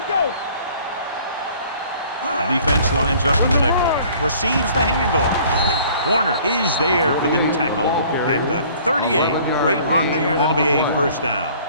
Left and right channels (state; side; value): inverted; both; correlation -0.53